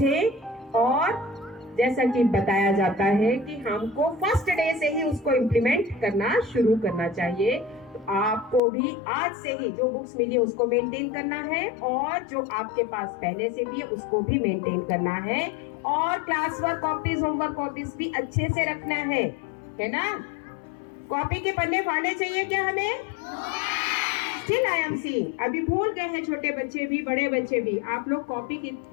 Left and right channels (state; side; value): drops out; right; at 8.6 s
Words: और जैसा कि बताया जाता है कि हमको फर्स्ट डे से ही उसको इम्प्लीमेंट करना शुरू करना चाहिए। तो आपको भी आज से ही जो बुक्स मिली उसको मेंटेन करना है और जो आपके पास पहले से भी है उसको भी मेंटेन करना है और class work copies, homework copies भी अच्छे से रखना है ना। कॉपी के पन्ने फाड़ने चाहिए क्या हमें? Still I am seeing, अभी भूल गए हैं छोटे बच्चे भी, बड़े बच्चे भी, आप लोग कॉपी